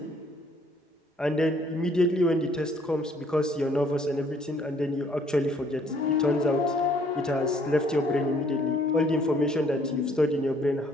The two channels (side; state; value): both; normal; correlation 0.62